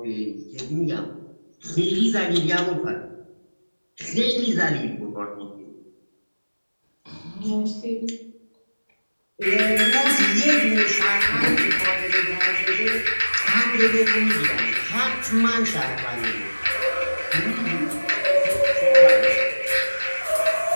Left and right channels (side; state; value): both; inverted; correlation -1.00